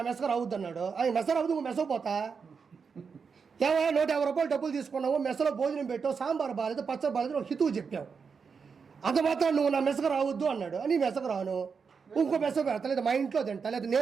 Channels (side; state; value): left; quieter; 5.7 dB